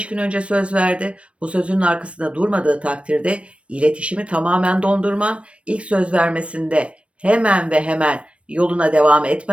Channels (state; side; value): late; left; 0.061 ms